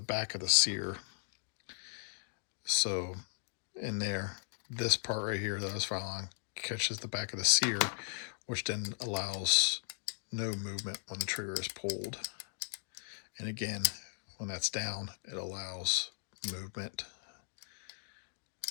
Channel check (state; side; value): silent; right; digital silence